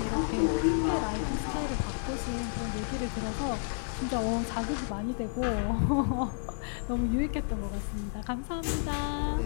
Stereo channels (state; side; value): silent; right; 57 dB below the other